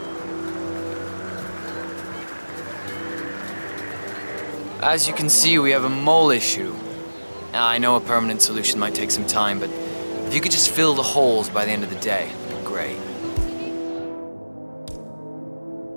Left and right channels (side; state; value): both; inverted; correlation -1.00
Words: As you can see, we have a mole issue. Now, I know a permanent solution might take some time, but if you could just fill the holes by the end of the day, it'd be great.